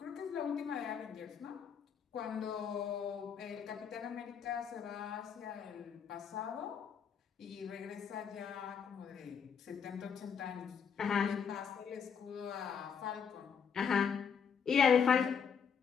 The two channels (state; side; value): quieter; right; 6.9 dB